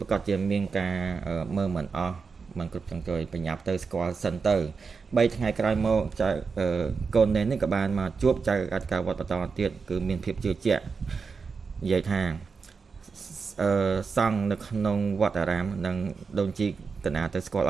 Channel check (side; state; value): left; quieter; 5.1 dB